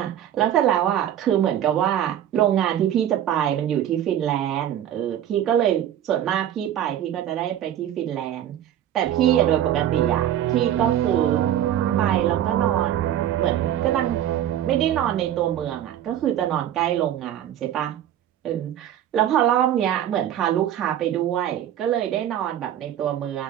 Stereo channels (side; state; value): left; quieter; 11.1 dB